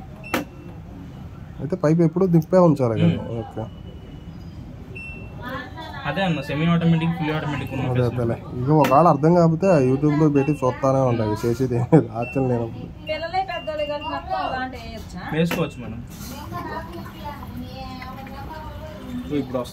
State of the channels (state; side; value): identical; both; correlation 1.00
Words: అయితే పైప్ ఎప్పుడు దింపే ఉంచాలి కదా. ఓకే. అదే అన్న సెమీ ఆటోమేటిక్, ఫుల్ ఆటోమేటిక్. ఇక ఒకవేళ అర్థం కాకపోతే యూట్యూబ్ లో పెట్టి చూస్తానే ఉంటాయి, చేసేది ఆచరణ లేనప్పుడు వేసుకోవచ్చు మేడం. ఇప్పుడు